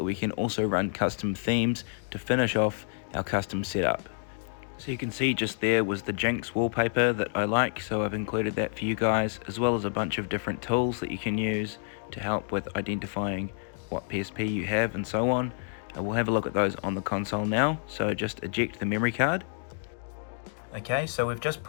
we can also run custom themes to finish off our custom setup. So you can see just there was the Jinx wallpaper that I like, so I've included that for you guys, as well as a bunch of different tools that you can use to help with identifying what PSP you have and so on. We'll have a look at those on the console now, so just eject the memory card. Okay, so we've just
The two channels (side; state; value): right; silent; 59 dB below the other